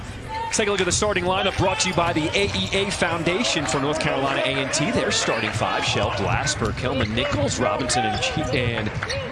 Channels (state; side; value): identical; both; correlation 1.00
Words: Let's take a look at the starting lineup brought to you by the AEA Foundation for North Carolina A&T. Their starting 5, Shell Glasper, Kelman Nichols, Robinson, and